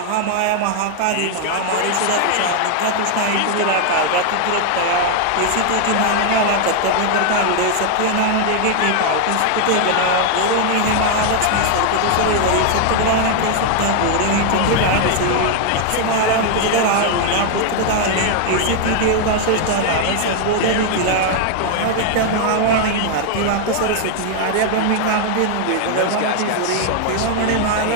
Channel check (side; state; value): both; different; correlation 0.00